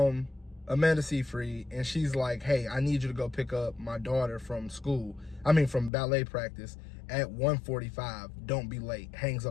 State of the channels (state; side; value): drops out; right; at 5.9 s